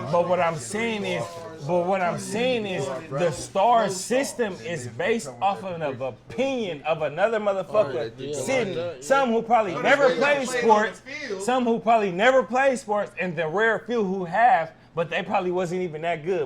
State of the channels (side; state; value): both; identical; correlation 1.00